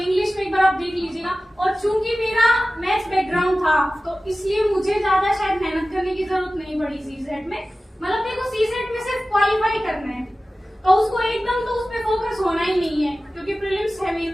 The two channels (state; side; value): normal; both; correlation 0.96